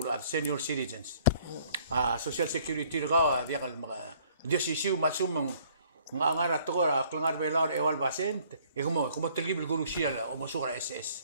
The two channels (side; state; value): both; inverted; correlation -0.60